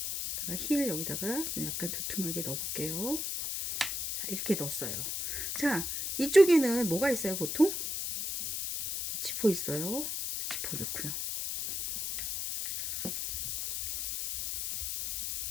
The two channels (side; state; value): left; noise; hiss, 3 dB below the sound